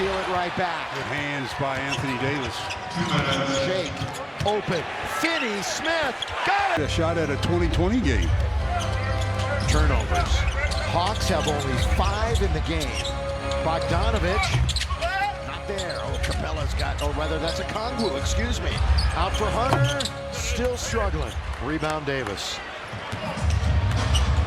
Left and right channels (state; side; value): identical; both; correlation 1.00